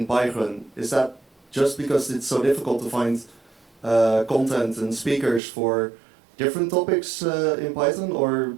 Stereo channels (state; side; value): drops out; left; at 5.4 s